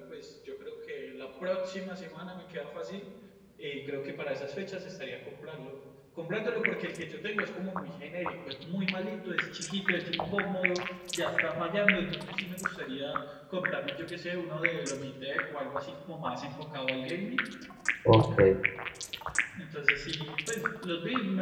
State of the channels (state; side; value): identical; both; correlation 1.00